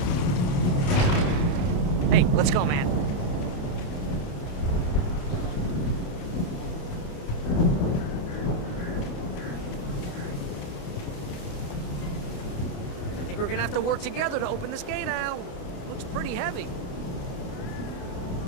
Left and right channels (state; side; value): late; right; 28 ms